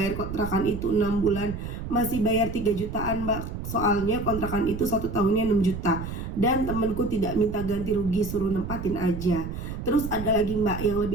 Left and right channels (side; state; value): right; noise; rumble, 7 dB below the sound